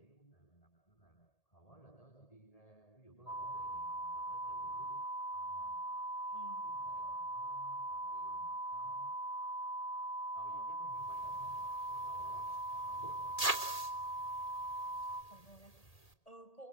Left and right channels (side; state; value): right; late; 1.8 ms